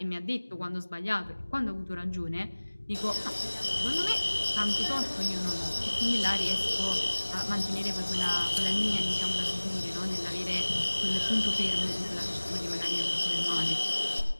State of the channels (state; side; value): inverted; both; correlation -1.00